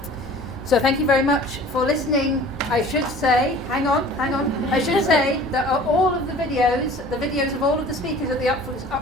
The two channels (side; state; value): both; normal; correlation 0.46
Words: So thank you very much for listening. I should say, hang on. I should say that all of the videos of all of the speakers at the